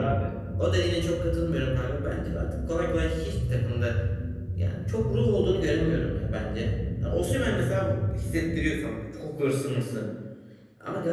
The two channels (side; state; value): both; identical; correlation 1.00